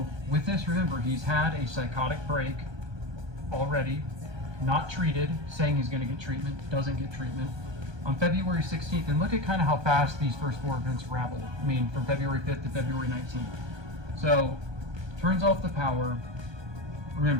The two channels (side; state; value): left; late; 1.2 ms